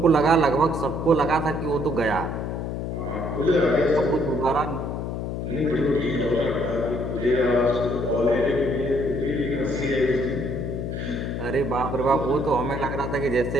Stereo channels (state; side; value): noise; left; hum, 4 dB below the sound